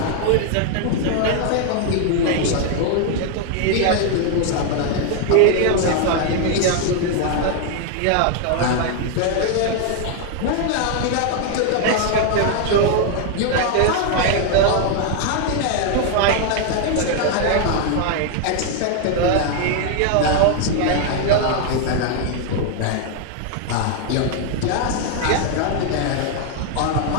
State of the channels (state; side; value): different; both; correlation 0.00